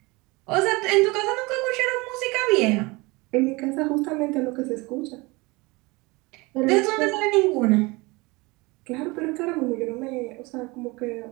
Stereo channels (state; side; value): quieter; left; 24.5 dB